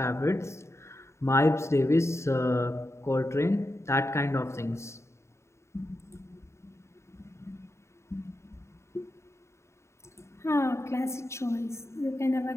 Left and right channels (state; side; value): late; right; 0.13 ms